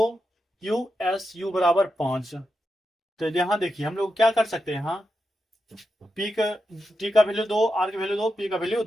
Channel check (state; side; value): normal; both; correlation 0.87